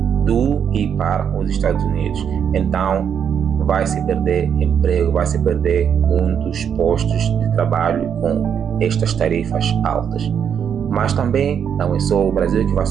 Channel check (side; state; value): left; quieter; 8.0 dB